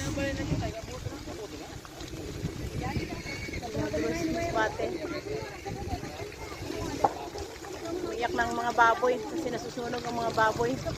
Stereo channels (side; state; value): both; identical; correlation 1.00